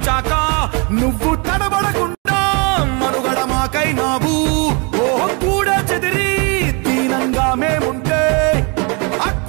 నువ్వు తడబడకుండా మనుగడ మాకైనావు ఓ కూడా చెదిరి దీనంగా మేముంటే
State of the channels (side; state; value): left; quieter; 32.5 dB